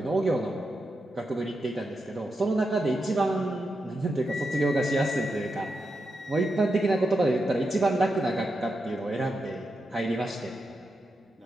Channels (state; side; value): normal; both; correlation 0.87